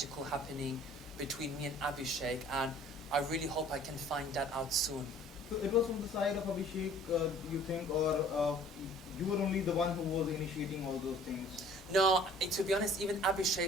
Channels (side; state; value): both; normal; correlation 0.52